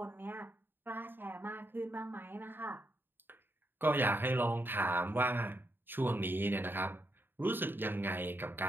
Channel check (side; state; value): left; late; 0.097 ms